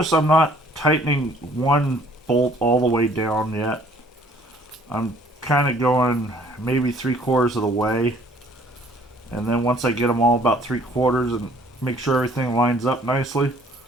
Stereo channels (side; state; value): both; normal; correlation 0.58